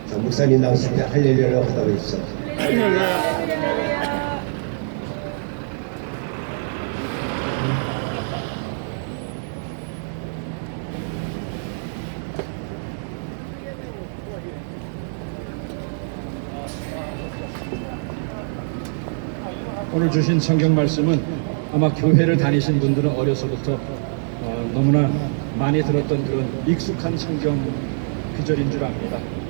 자, 목사님 나오실 때 할렐루야라고 하다고 해주세요. 오늘 주신 성경 말씀은 아마 교회를 다니신 분들은 어려서부터 너무나 많이 들었던 그런 익숙한 성경 구절인 줄 압니다.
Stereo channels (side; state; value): left; silent; digital silence